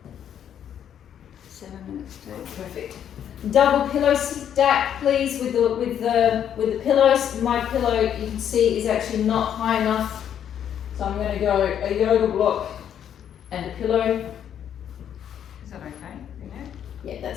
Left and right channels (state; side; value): quieter; right; 9.4 dB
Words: 7 minutes to. Perfect. Double pillow stack, please, with the pillows. My pillow, you can see, is actually not high enough, so I'm going to go a yoga block and a pillow. Is that okay? Yeah,